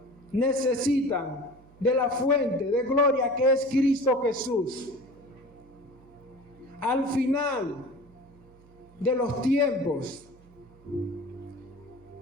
necesitan de la fuente de gloria que es Cristo Jesús. Al final de los tiempos,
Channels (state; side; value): noise; right; hum, 26 dB below the sound